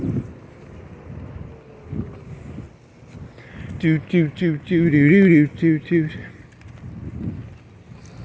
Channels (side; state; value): both; identical; correlation 1.00